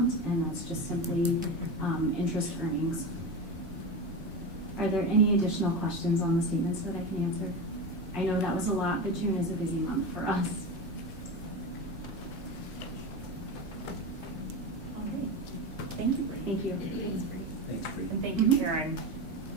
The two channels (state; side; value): normal; both; correlation 0.22